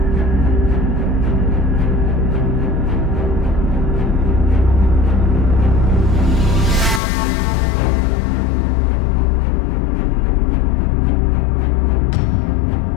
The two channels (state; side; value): drops out; right; at 7.0 s